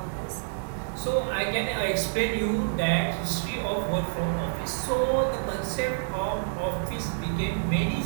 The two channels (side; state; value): left; silent; digital silence